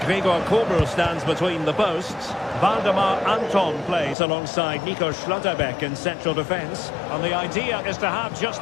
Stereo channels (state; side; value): drops out; right; at 4.2 s